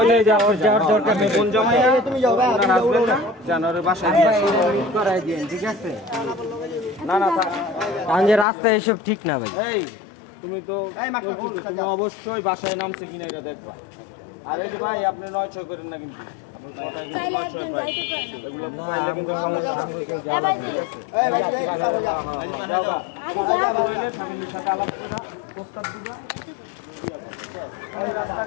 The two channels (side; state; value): right; drops out; at 8.5 s